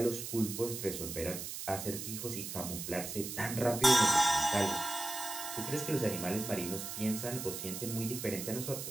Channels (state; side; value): noise; right; hiss, 7 dB below the sound